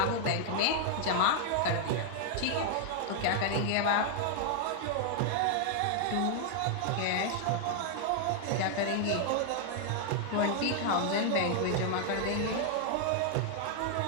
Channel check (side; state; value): both; different; correlation 0.00